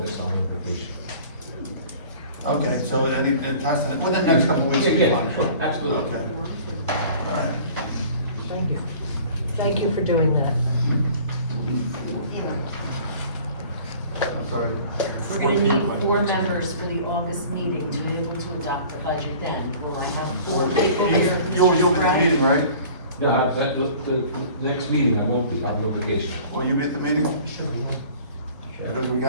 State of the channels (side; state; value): both; inverted; correlation -0.47